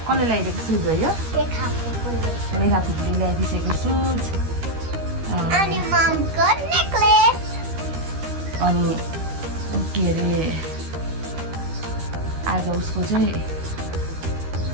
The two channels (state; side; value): late; left; 13 ms